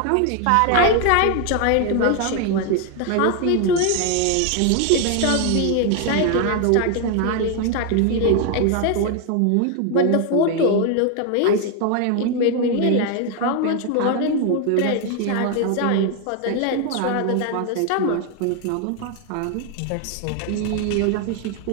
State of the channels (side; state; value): both; different; correlation 0.01